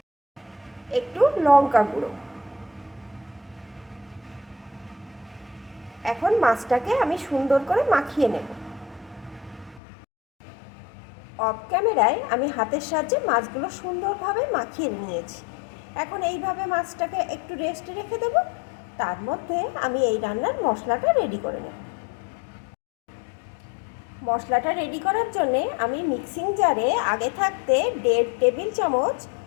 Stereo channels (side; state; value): right; drops out; at 9.8 s